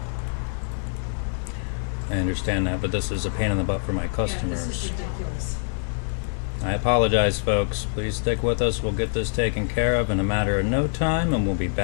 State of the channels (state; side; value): silent; right; digital silence